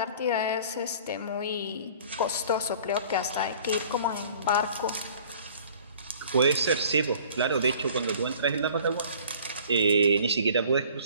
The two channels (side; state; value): both; inverted; correlation -0.50